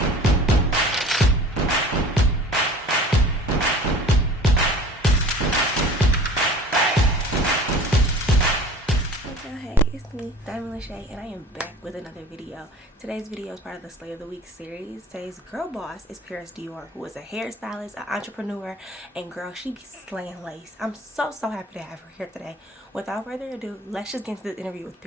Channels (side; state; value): both; normal; correlation 0.43